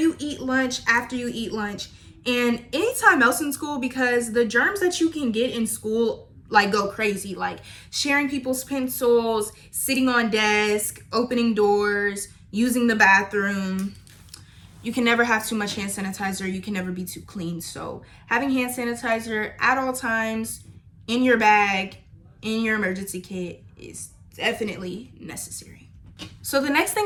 eat lunch, after you eat lunch, and anytime else in school, because the germs that you can get in school like go crazy, like sharing people's pencils, sitting on desk, opening doors, using the bathroom. You can never have too much hand sanitizer. You can never be too clean. So having hand sanitizer at all times in your bag, in your emergency kit, is definitely necessary. So the next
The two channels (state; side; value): identical; both; correlation 1.00